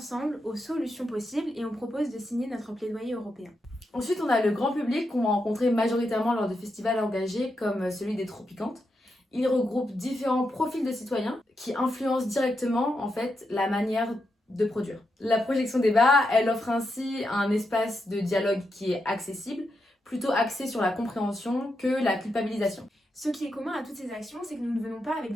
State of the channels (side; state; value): both; normal; correlation 0.85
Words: aux solutions possibles et on propose de signer notre plaidoyer européen. Ensuite, on a le grand public qu'on va rencontrer majoritairement lors de festivals engagés comme celui des Tropicantes. Il regroupe différents profils de citoyens qui influencent directement en fait la manière de produire. La projection débat, elle offre ainsi un espace de dialogue qui est accessible, plutôt axé sur la compréhension que la culpabilisation. Ce qui est commun à toutes ces actions, c'est que nous ne venons pas avec